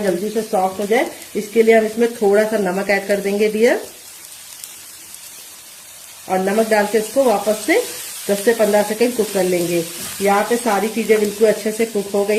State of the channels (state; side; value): identical; both; correlation 1.00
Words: जल्दी से सॉफ्ट हो जाए, इसके लिए हम इसमें थोड़ा सा नमक ऐड कर देंगे डियर, और नमक डाल के इसको वापस से 10 से 15 सेकंड कुक कर लेंगे। यहाँ पे सारी चीजें बिल्कुल अच्छे से कुक हो